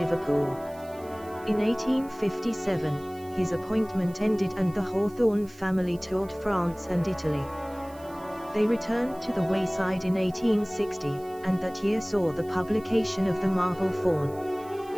In 1857, his appointment ended and the Hawthorne family toured France and Italy. They returned to the Wayside in 1860, and that year saw the publication of The Marble Faun.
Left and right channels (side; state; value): right; noise; hiss, 24 dB below the sound